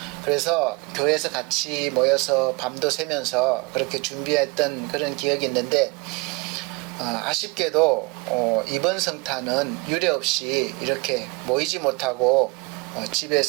그래서 교회에서 같이 모여서 밤도 새면서 그렇게 준비했던 그런 기억이 있는데 아쉽게도 이번 성탄은 유례없이 이렇게 모이지 못하고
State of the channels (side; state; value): left; quieter; 27.4 dB